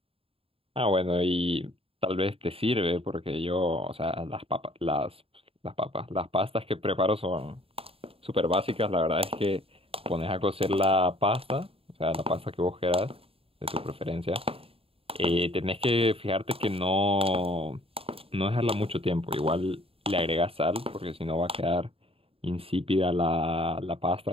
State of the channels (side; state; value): left; late; 0.27 ms